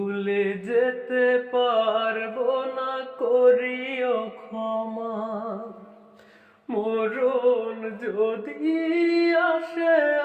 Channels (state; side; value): identical; both; correlation 1.00